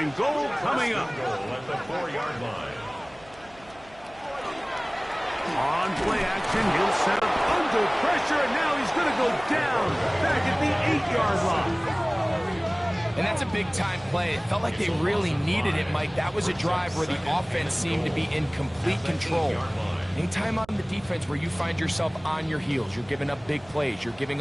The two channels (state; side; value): noise; right; hum, 25 dB below the sound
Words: goal coming up. At the 4-yard line. On play action, he'll set up under pressure, and now he's going to go down back at the 8-yard line. And that's a big-time play. It felt like they really needed it, Mike. That was a drive where the offense seemed to be in complete control. Anytime on the defense where you find yourself on your heels, you're giving up big plays, you're giving